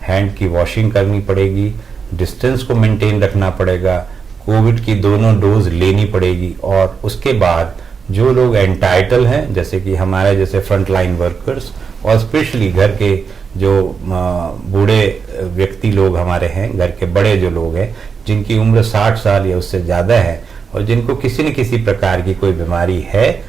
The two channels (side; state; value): left; quieter; 5.8 dB